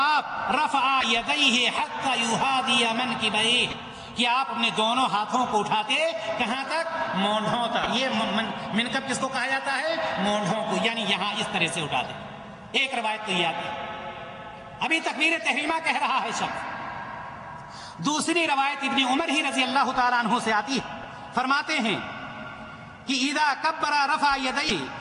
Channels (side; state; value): both; identical; correlation 1.00